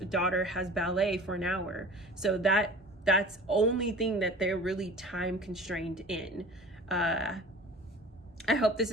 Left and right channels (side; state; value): both; normal; correlation 0.42